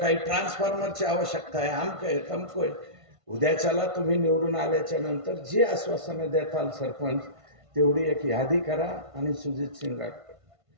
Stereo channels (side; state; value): left; late; 1.5 ms